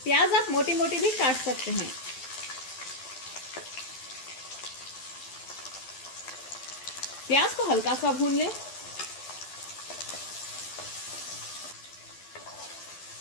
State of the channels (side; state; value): right; late; 12 ms